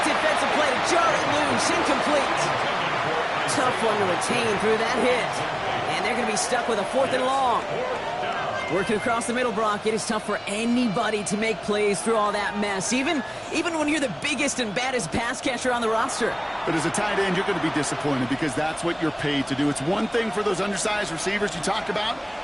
defensive play to jar it loose. Incomplete. Tough one to retain through that hit. And they're going to be stuck with a 4th and long. Working across the middle, Brock, it is tough for anybody to make plays through all that mess, even when you're the biggest and baddest pass catcher on the roster. But as a tight end, you're going to be disappointed because that's what you're paid to do. It's one thing for those undersized receivers you talked about.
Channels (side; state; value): both; identical; correlation 1.00